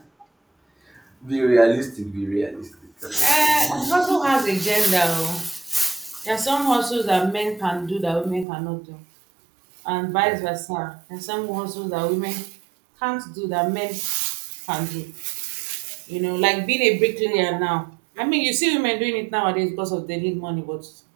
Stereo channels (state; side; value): drops out; left; at 8.5 s